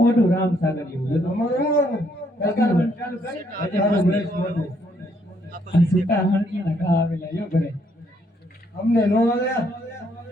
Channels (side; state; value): both; normal; correlation 0.71